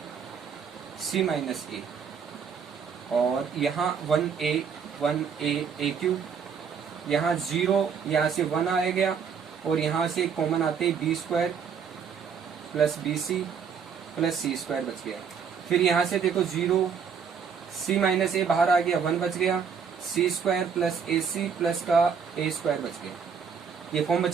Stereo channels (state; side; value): quieter; left; 6.6 dB